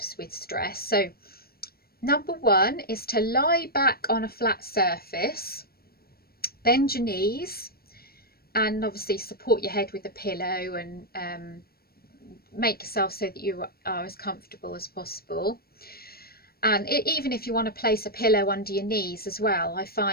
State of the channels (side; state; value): right; late; 0.44 ms